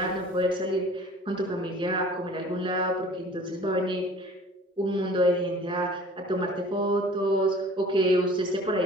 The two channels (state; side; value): normal; both; correlation 0.47